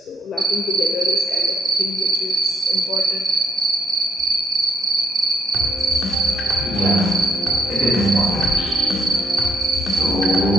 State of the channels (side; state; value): both; normal; correlation 0.70